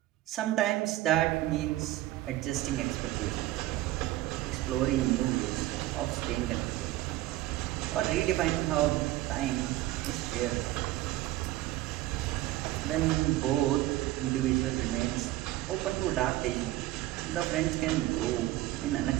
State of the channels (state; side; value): quieter; left; 16.1 dB